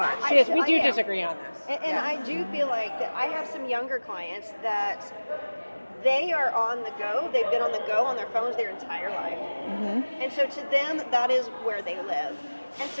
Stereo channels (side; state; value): both; inverted; correlation -1.00